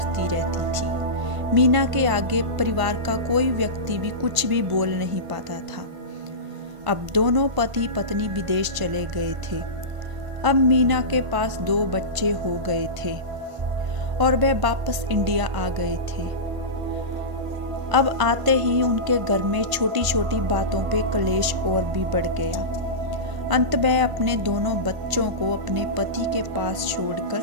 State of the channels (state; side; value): late; left; 1.5 ms